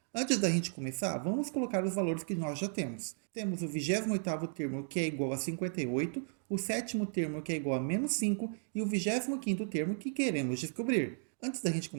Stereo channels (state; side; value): silent; left; digital silence